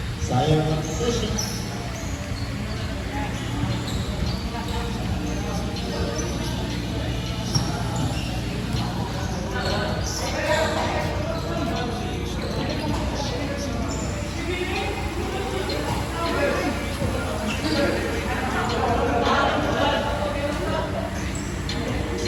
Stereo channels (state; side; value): identical; both; correlation 1.00